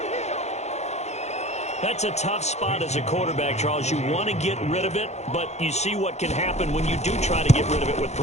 That's a tough spot as a quarterback, Charles. You want to get rid of it, but you see what can happen when you do try to get rid of it with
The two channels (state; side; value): late; right; 0.32 ms